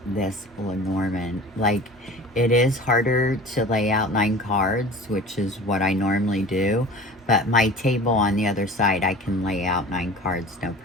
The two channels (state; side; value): normal; both; correlation 0.40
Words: this Lenormand. Like, it is harder to lay out 9 cards, which is what I normally do, but my table on the other side, I can lay out 9 cards, no